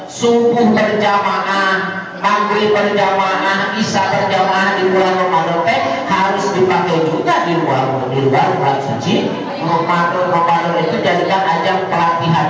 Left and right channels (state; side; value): identical; both; correlation 1.00